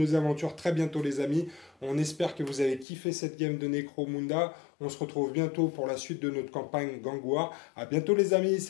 aventures très bientôt, les amis. On espère que vous avez kiffé cette game de Necromunda. On se retrouve bientôt pour la suite de notre campagne Gang War. À bientôt, les amis.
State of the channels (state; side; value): drops out; right; at 2.9 s